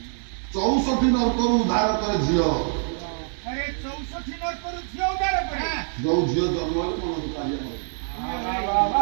64 ନର୍କରୁ ଉଦ୍ଧାର କରେ ଝିଅ ଯୋଉ ଝିଅ ଜନ୍ମ ହେଲେ ମନ ଦୁଃଖ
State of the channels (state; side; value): silent; left; digital silence